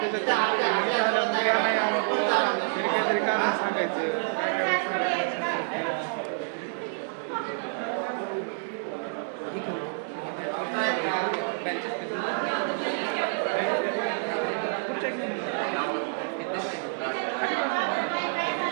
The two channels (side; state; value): left; silent; digital silence